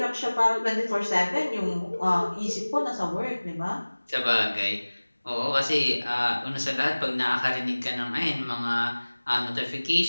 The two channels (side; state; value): both; inverted; correlation -1.00